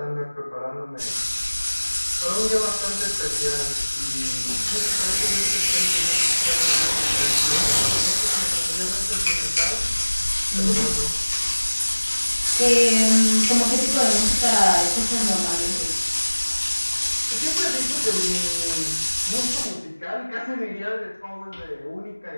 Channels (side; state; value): both; inverted; correlation -1.00